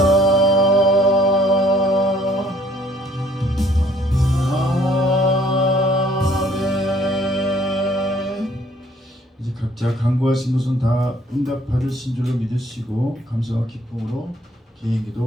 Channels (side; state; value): both; normal; correlation 0.60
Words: 아멘. 이제 각자 간구하신 것은 다 응답받으신 줄로 믿으시고 감사와 기쁨으로